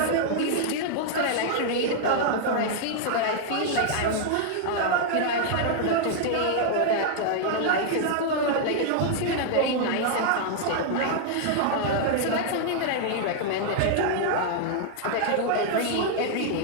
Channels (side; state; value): both; different; correlation -0.01